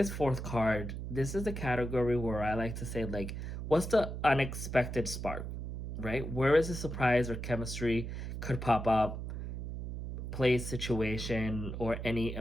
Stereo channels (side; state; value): right; noise; hum, 5 dB below the sound